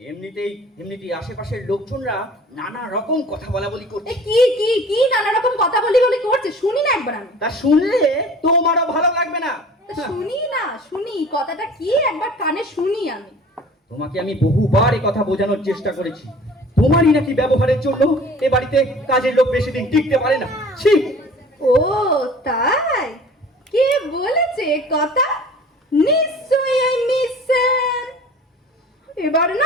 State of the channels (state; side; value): normal; both; correlation 0.46